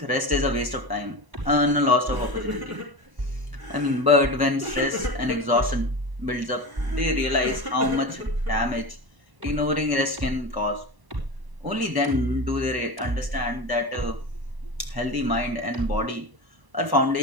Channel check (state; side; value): late; left; 1.0 ms